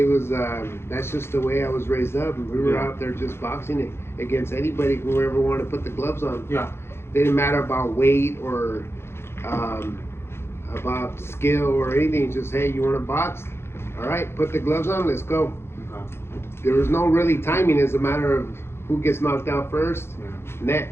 was that's just the way I was raised up. We were out there just boxing against anybody, whoever wanted to put the gloves on. Yeah. Didn't matter about weight or about skill or anything. Just, hey, you want to box? All right, put the gloves on, let's go. There was no really timing. It's a matter of who gets knocked out first,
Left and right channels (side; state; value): right; late; 0.12 ms